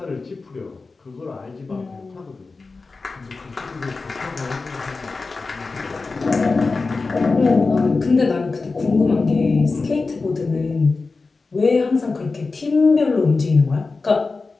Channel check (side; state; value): right; quieter; 4.0 dB